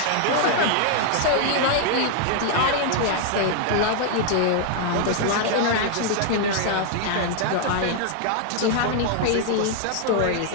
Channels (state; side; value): different; both; correlation 0.00